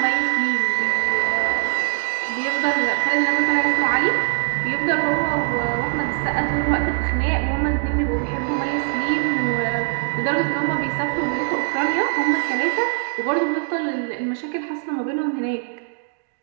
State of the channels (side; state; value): left; silent; 63 dB below the other